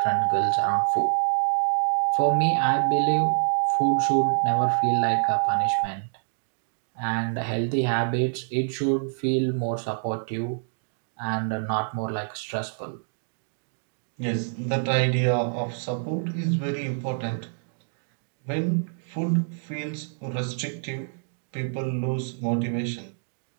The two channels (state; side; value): silent; left; digital silence